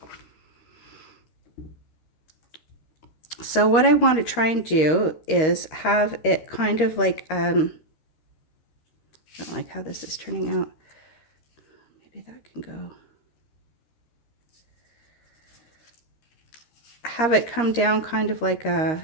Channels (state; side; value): late; right; 13 ms